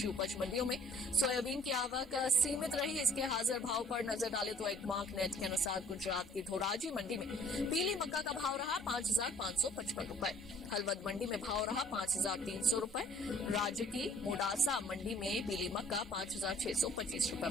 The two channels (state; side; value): normal; both; correlation 0.56